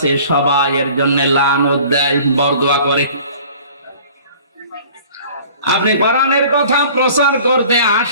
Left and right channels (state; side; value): inverted; both; correlation -0.48